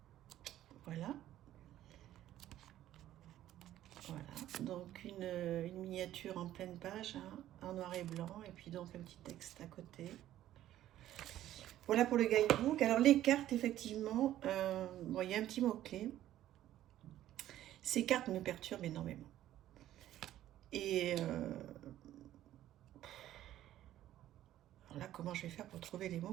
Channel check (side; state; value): left; quieter; 13.0 dB